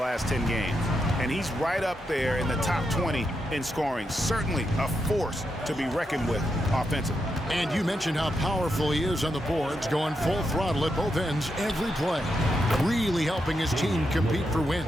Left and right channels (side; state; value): both; normal; correlation 0.84